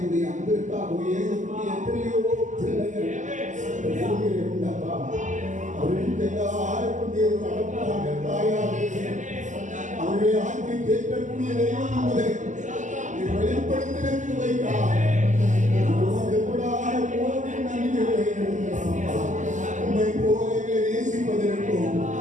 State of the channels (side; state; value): left; late; 0.36 ms